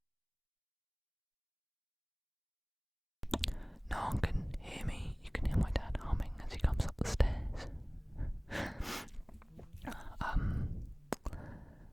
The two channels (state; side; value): identical; both; correlation 1.00